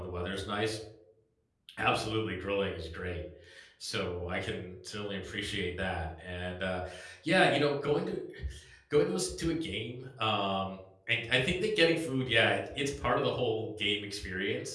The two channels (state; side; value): identical; both; correlation 1.00